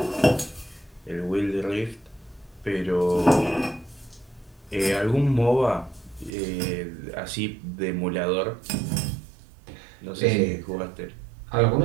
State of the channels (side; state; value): left; drops out; at 6.3 s